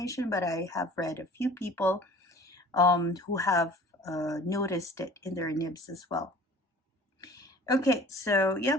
but I have read a few people who have noticed it in their nibs as well. Okay, so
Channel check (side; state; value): both; normal; correlation 0.46